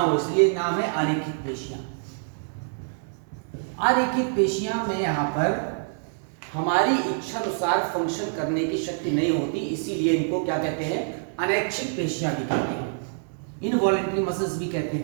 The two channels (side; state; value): left; silent; digital silence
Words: इसलिए नाम है आरेखित पेशियां। आरेखित पेशियां में यहाँ पर हमारी इच्छा अनुसार फंक्शन करने की शक्ति नहीं होती, इसीलिए इनको क्या कहते हैं? अनैच्छिक पेशियां भी कहते हैं। इनवॉलेंट्री मसल्स भी कहते